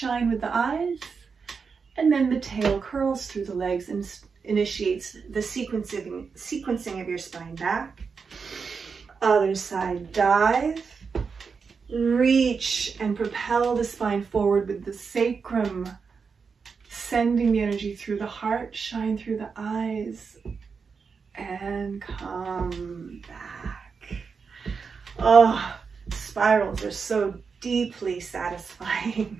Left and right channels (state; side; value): quieter; left; 5.4 dB